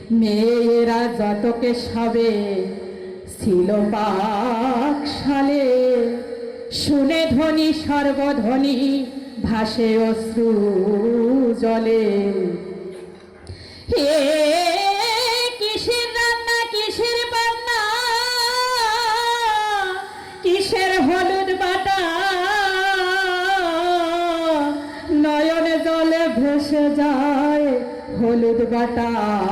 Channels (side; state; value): both; identical; correlation 1.00